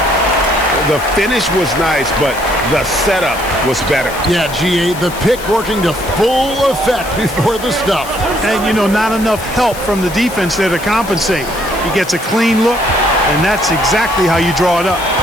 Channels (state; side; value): noise; left; hiss, 14 dB below the sound